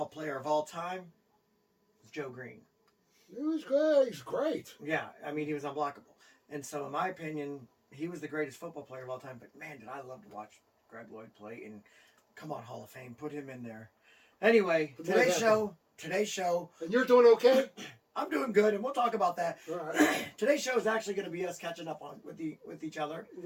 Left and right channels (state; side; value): identical; both; correlation 1.00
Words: player of all time is Joe Green. He was good. He's great. Yeah, I mean, he was unblockable. And so, in my opinion, he was the greatest football player of all time. But, man, did I love to watch Greg Lloyd play. And, come on, Hall of Fame, put him in there. Anyway, today's show. And you're doing okay? I'm doing good, and we'll talk about that. All right. Today's show is actually going to be us catching up with each other.